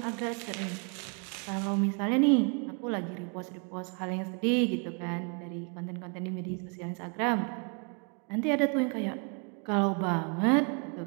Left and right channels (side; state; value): left; quieter; 38.1 dB